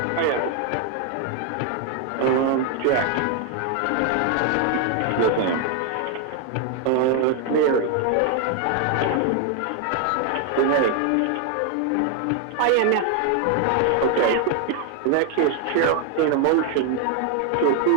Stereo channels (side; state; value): both; different; correlation 0.01